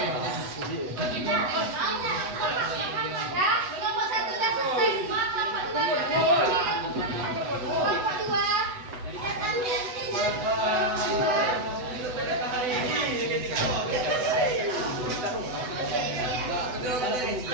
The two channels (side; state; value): left; late; 8.0 ms